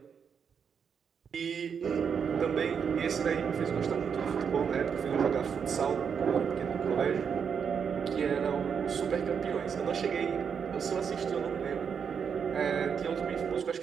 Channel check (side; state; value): left; quieter; 6.9 dB